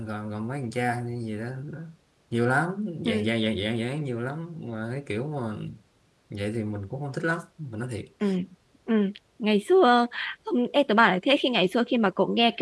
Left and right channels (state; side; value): identical; both; correlation 1.00